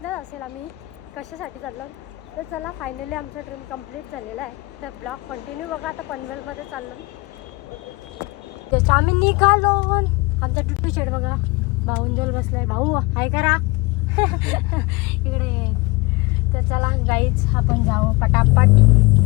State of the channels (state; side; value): quieter; right; 24.1 dB